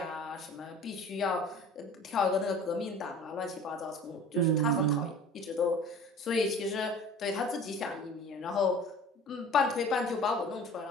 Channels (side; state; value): both; normal; correlation 0.43